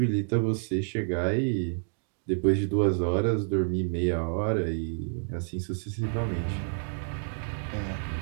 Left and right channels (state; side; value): silent; left; 59 dB below the other